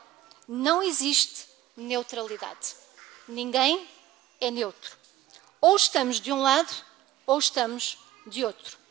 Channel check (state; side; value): quieter; left; 14.5 dB